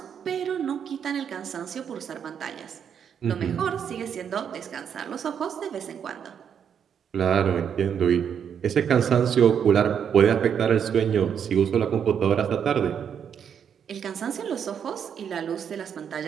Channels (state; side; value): quieter; left; 8.0 dB